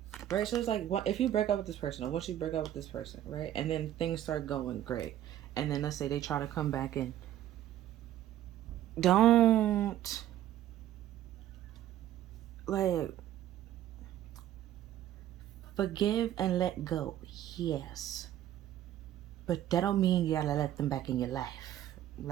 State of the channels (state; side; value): quieter; left; 12.3 dB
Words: Right? So it's like, if you break up with this person, or once you break up with this person, right? And then things start going great. And then let's say they try to come back in. Don't, like, forgive and let go. Yes. But that don't mean you gotta let them back in your life.